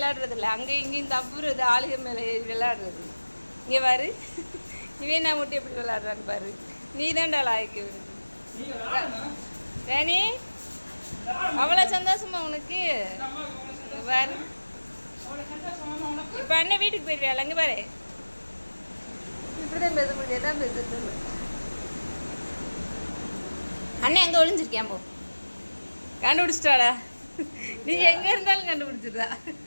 இல்லை, அங்கே இங்கேயும் தப்புறது ஆளுக மேலே விளையாடுறது. இங்கே பாரு, இவன் நான் மட்டும் எப்படி விளையாடுறான்னு பாரு. நீ தான்டா லாய்க்கு விடுது தேனி. அவ்வளோ சந்தோஷமா உனக்கு பாரு. இப்போ அண்ணன் வீட்டுக்கு போயிருவியால, அங்கே பாரு. இப்படிதான் பேச முடியாது, தான் பேசுறது. அண்ணன் எங்கே ஒளிஞ்சிருக்கேன் போ, கண்டுபிடிச்சிட்டாடா. நீ எங்கே இருந்தாலும் கண்டுபிடிச்சிடுறா,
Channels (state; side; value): inverted; both; correlation -1.00